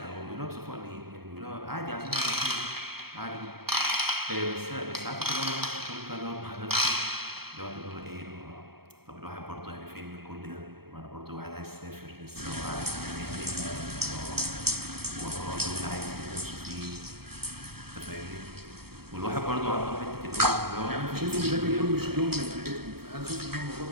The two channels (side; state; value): left; late; 0.95 ms